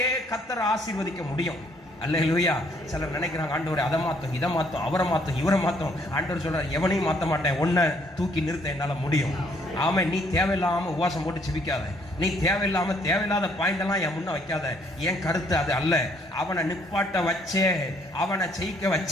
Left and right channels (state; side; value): normal; both; correlation 0.66